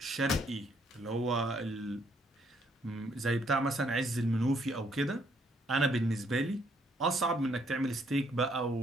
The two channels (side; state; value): both; normal; correlation 0.69